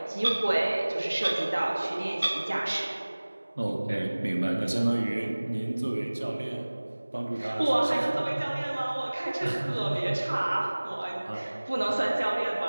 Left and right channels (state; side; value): inverted; both; correlation -1.00